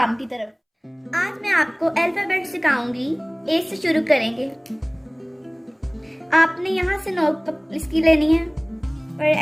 की तरफ। आज मैं आपको अल्फ़ाबेट सिखाऊंगी। ए से शुरू करेंगे। आपने यहाँ से नोट इसकी लेनी है और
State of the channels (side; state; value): both; identical; correlation 1.00